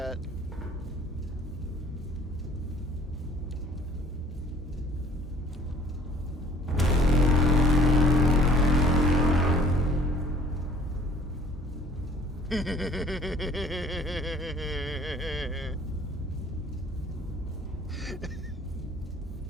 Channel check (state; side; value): normal; both; correlation 0.53